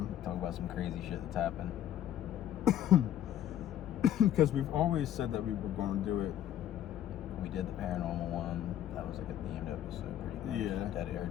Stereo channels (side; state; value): right; quieter; 11.3 dB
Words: about some crazy shit that's happened. Because we've always said that we were going to do it. We did the paranormal one. That was like a themed episode, pretty much. Yeah.